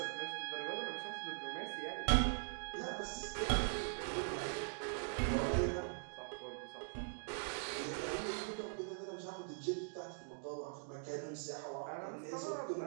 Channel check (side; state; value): left; silent; digital silence